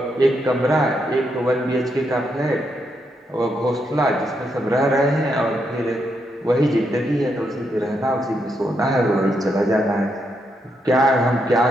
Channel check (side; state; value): both; normal; correlation 0.80